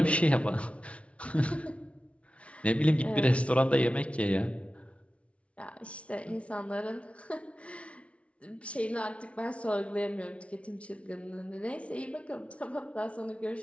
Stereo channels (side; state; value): right; late; 0.062 ms